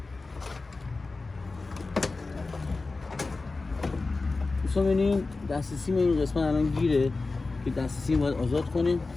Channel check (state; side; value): quieter; right; 3.6 dB